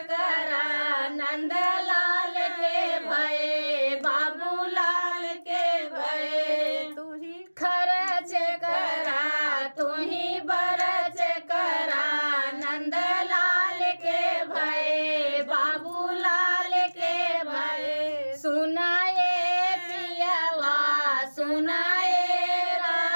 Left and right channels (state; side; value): inverted; both; correlation -1.00